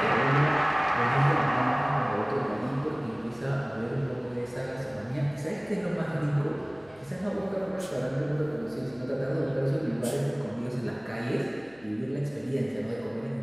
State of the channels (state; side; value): noise; left; hum, 28 dB below the sound